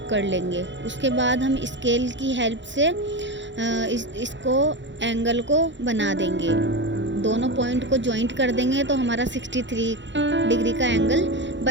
कर लेंगे। उसके बाद हम स्केल की हेल्प से इसको एंगल को बना देंगे। दोनों पॉइंट को जॉइंट कर देंगे तो हमारा 63 डिग्री का एंगल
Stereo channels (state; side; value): late; left; 0.53 ms